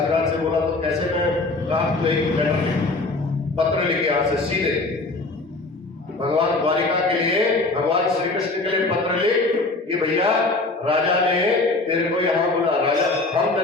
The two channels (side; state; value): right; quieter; 3.3 dB